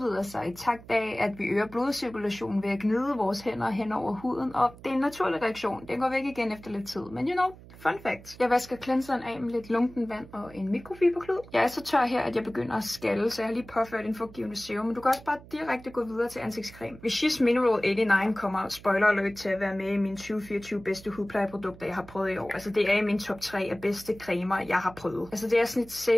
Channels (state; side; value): noise; right; hum, 19 dB below the sound